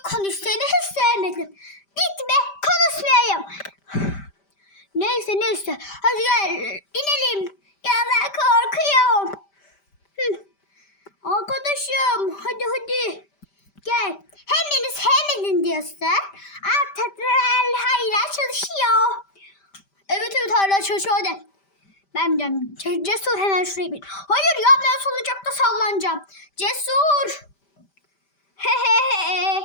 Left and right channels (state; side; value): late; right; 5.1 ms